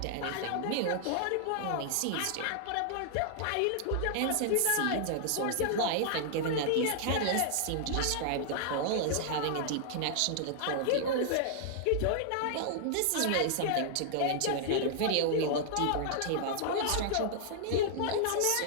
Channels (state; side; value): different; both; correlation -0.01